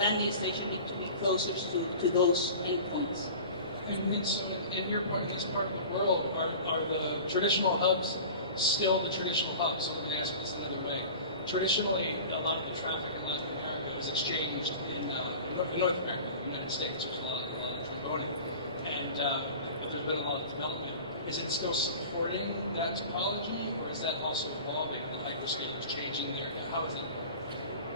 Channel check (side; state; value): both; inverted; correlation -0.38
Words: station needs to be closer to those endpoints. And so in your part, in this part of the world, are the traditional hubs still the traditional hubs? So let me ask this another way. Traditionally, a lot of the traffic in Latin America is exchanged in North America, the United States. There's a lot of transboarding, and there's been a lot of development. Is it still supporting that topology, or is that also evolving? The hyperscalers changing there? How is it?